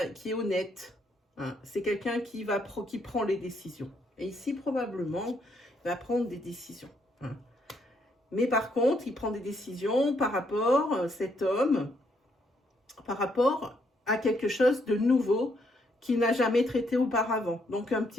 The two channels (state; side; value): normal; both; correlation 0.73